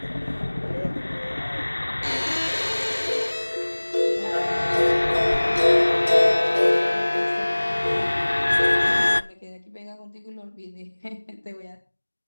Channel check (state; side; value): inverted; both; correlation -1.00